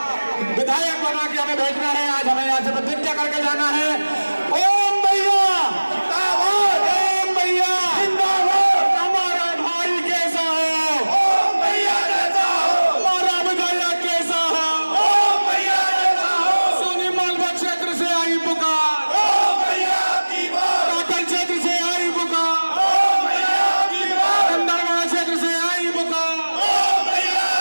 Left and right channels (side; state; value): both; inverted; correlation -1.00